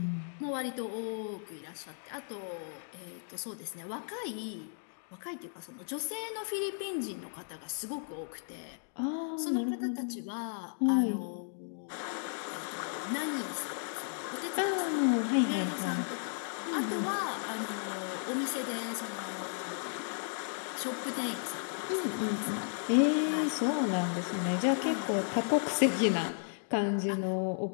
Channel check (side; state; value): right; silent; digital silence